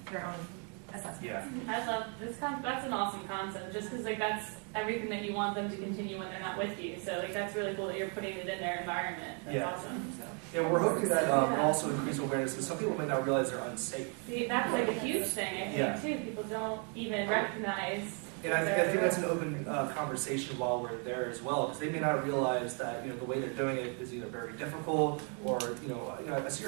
their own assessment. Yeah. I love this. That's an awesome concept. Just because that's everything that you want them to continue when they're not with you. So that's really cool that you're putting it in their environment. That's awesome. So. Yeah, we're hoping that will also increase awareness because some people may not realize they're unsafe. See, that's a huge thing, I think, too. People don't even recognize. And I think that's an open conversation while we're there as well, because they may not realize that the way they're doing it is either very difficult or I see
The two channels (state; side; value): quieter; left; 39.3 dB